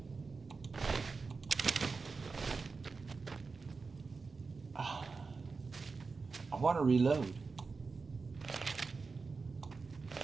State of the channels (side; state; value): left; quieter; 4.4 dB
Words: I want to reload.